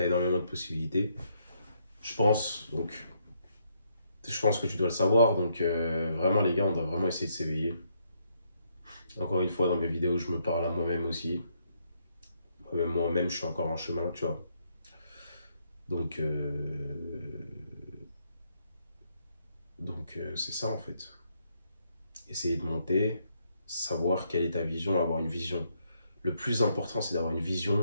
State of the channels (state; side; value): inverted; both; correlation -0.74